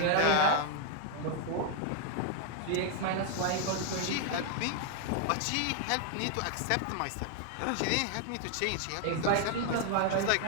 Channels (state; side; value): different; both; correlation 0.00